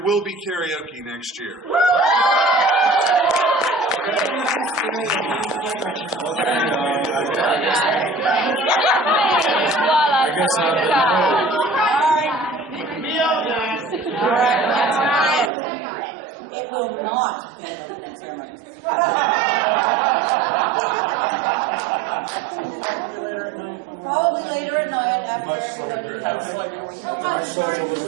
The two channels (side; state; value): left; drops out; at 15.5 s